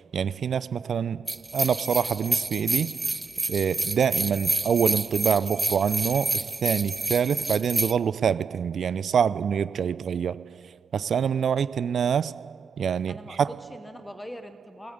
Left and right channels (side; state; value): left; quieter; 5.8 dB